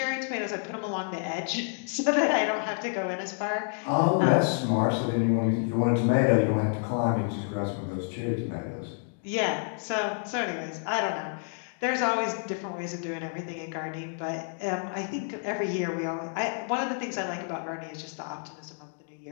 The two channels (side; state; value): right; silent; 56 dB below the other